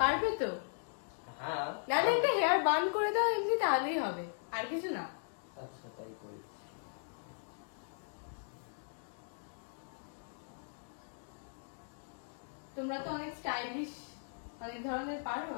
তো? হ্যাঁ। নাহলে একটা হেয়ার বান করে দাও, এমনি তাহলেই হবে, আর কিছু না। আচ্ছা তাই করি। তোমরা তো অনেক স্টাইলিশ, অনেক ধরনের পারো,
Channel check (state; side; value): silent; right; digital silence